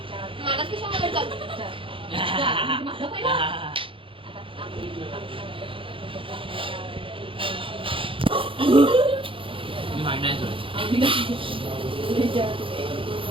मला कशा आवडतात. मी मांडणार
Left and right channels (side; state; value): left; late; 0.25 ms